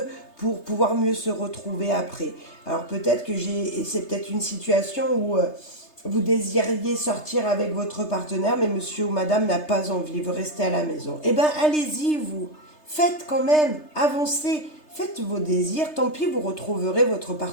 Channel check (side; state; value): right; late; 3.3 ms